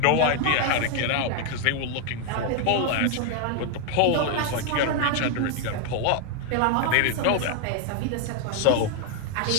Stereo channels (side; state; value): both; different; correlation 0.01